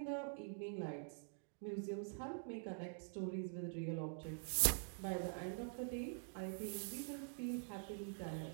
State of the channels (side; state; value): left; silent; digital silence